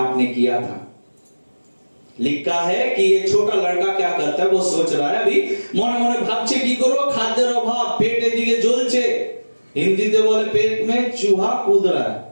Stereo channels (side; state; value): both; inverted; correlation -1.00